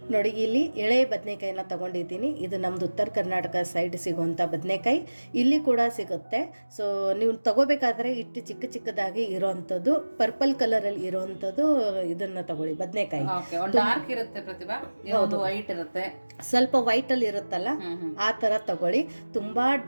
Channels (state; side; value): inverted; both; correlation -1.00